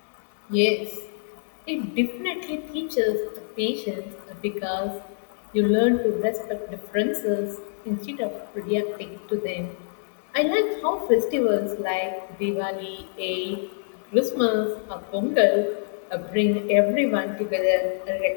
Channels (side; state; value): right; silent; digital silence